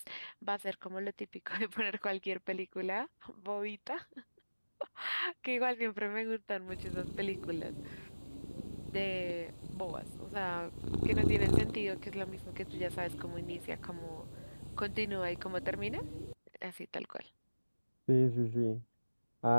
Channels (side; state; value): both; inverted; correlation -1.00